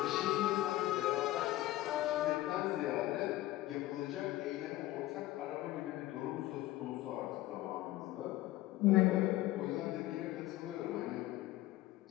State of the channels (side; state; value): right; quieter; 16.3 dB